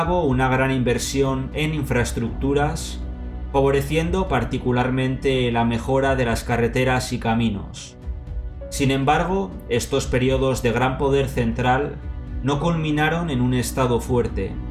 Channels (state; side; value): identical; both; correlation 1.00